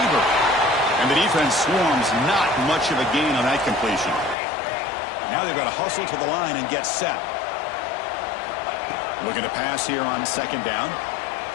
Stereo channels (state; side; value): drops out; right; at 4.4 s